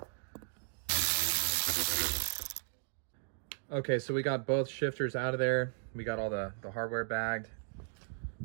Okay, so we got both shifters out of there. We got all the hardware bagged.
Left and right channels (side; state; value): left; silent; digital silence